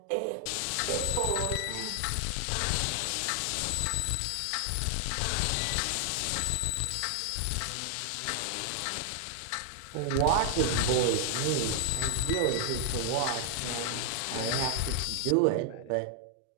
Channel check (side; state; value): both; different; correlation 0.00